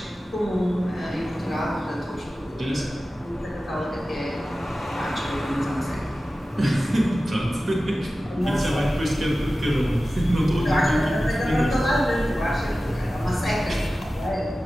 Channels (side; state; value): both; normal; correlation 0.95